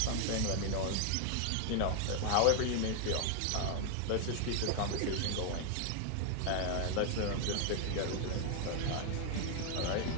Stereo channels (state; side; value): different; both; correlation 0.00